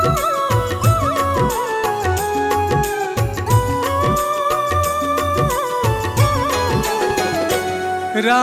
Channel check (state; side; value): identical; both; correlation 1.00